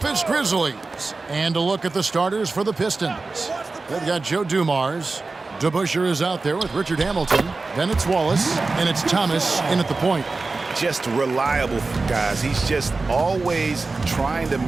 Grizzlies. And a look at the starters for the Pistons. They've got Joe Dumars. DeBusschere is out there with Richard Hamilton. Then it's Wallace, and it's Thomas in at the point. Just reliable, guys. He's just always trying to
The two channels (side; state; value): left; quieter; 3.7 dB